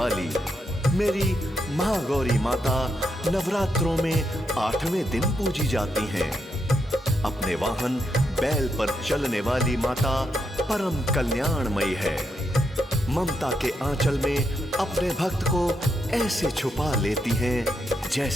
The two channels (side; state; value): both; normal; correlation 0.81